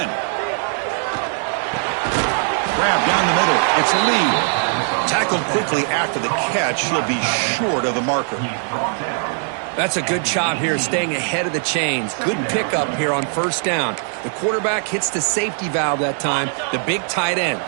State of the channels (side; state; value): left; silent; 58 dB below the other